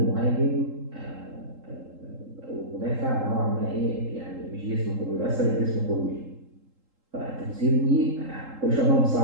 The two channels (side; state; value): left; late; 3.8 ms